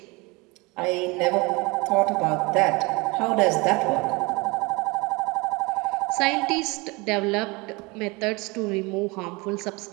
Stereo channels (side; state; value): left; quieter; 25.8 dB